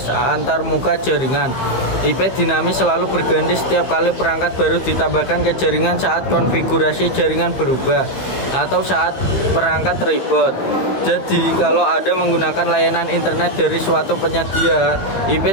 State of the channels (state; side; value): late; right; 15 ms